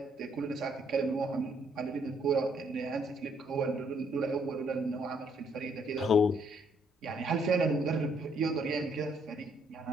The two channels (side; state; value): both; normal; correlation 0.69